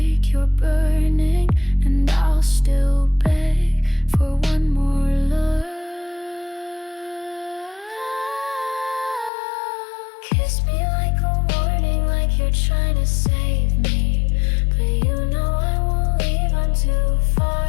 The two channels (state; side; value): drops out; right; at 9.3 s